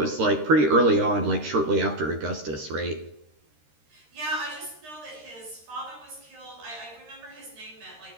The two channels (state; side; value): late; left; 13 ms